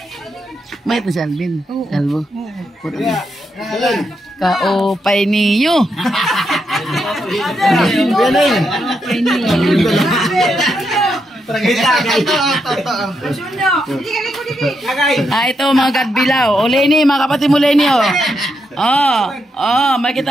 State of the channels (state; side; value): normal; both; correlation 0.82